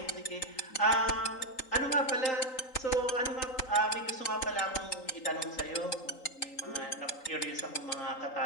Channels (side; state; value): right; late; 3.8 ms